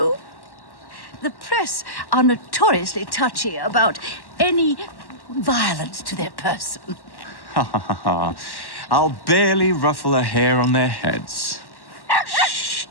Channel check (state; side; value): late; right; 1.1 ms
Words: The press are notoriously touchy about any violence to their person. Ha ha ha ha. I'll barely ruffle a hair on their heads. Shh,